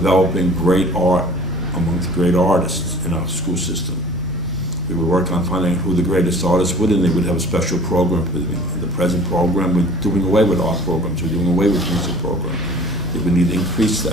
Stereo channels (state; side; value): normal; both; correlation 0.48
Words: great art amongst great artists in our school system. We would work on finding out who the greatest artists would, and they would have a special program for them. In the present program, we're doing away with art programs. We're doing away with music programs. We need to increase